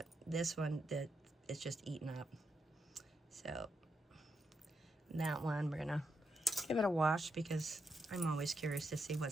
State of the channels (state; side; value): normal; both; correlation 0.83